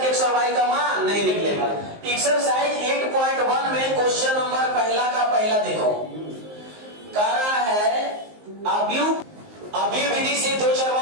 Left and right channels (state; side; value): late; left; 19 ms